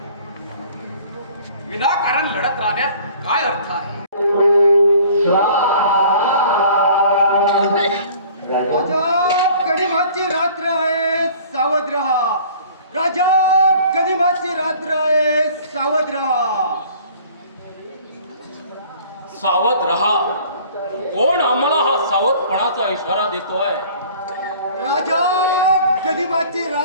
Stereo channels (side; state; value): both; inverted; correlation -0.50